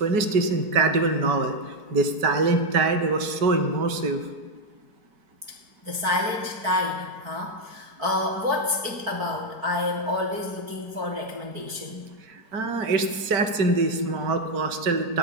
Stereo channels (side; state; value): left; late; 4.6 ms